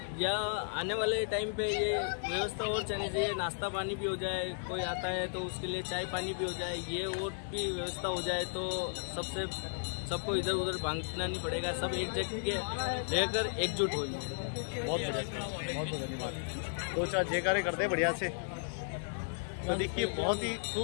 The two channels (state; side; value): silent; right; digital silence